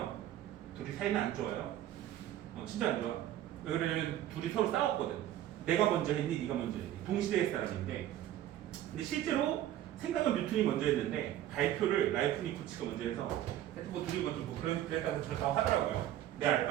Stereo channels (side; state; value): left; quieter; 12.6 dB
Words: 둘이 사이는 안 좋아요. 진짜 안 좋아. 왜 그러냐면 둘이 서로 싸웠거든. 내가 먼저 했니, 네가 먼저 했니. 동시대의 사람인데, 근데 실제로 생각은 뉴턴이 먼저 했는데 발표를 라이프니코츠가 먼저 해서 뭐 둘이 먼저 뭐 그랬다고 저렇다고 하더라고요. 내 알